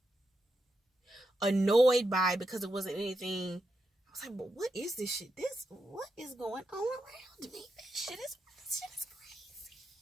annoyed by it because it wasn't anything. I was like, but what is this shit? What is going on around me? This shit is crazy.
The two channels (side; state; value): both; normal; correlation 0.85